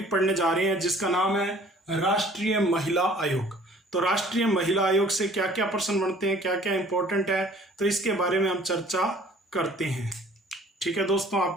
पढ़ने जा रहे हैं जिसका नाम है राष्ट्रीय महिला आयोग। तो राष्ट्रीय महिला आयोग से क्या क्या प्रश्न बनते हैं, क्या क्या इंपॉर्टेंट है, तो इसके बारे में हम चर्चा करते हैं। ठीक है दोस्तों,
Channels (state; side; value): normal; both; correlation 0.53